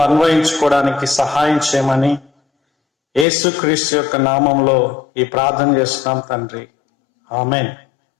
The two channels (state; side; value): drops out; right; at 3.2 s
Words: అన్వయించుకోవడానికి సహాయం చేయమని యేసుక్రీస్తు యొక్క నామంలో ఈ ప్రార్థన చేస్తున్నాం తండ్రి, ఆమేన్.